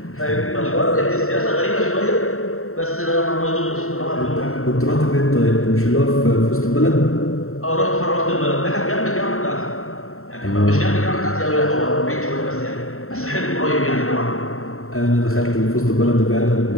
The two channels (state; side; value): late; right; 0.63 ms